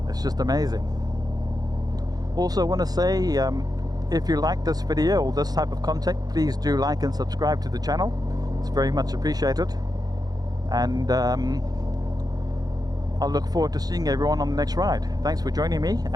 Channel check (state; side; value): late; left; 0.19 ms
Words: It's just amazing. Also want to say, if you like this video or this type of content, please do like and subscribe to the channel. It's very much appreciated. And I'll look forward to seeing everyone on the next ride. Thanks for joining me